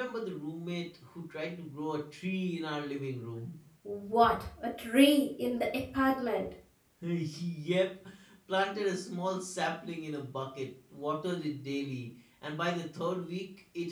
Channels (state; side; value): identical; both; correlation 1.00